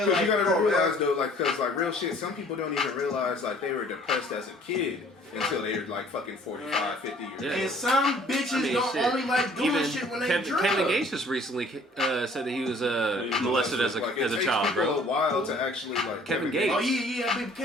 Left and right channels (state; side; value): normal; both; correlation 0.55